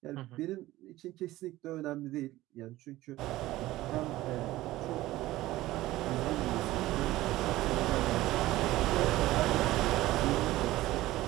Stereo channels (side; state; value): left; quieter; 16.7 dB